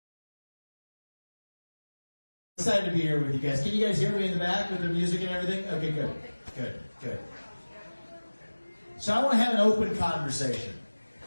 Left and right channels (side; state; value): both; inverted; correlation -1.00